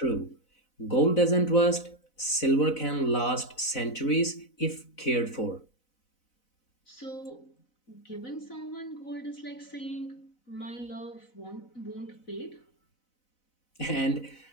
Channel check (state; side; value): late; right; 4.0 ms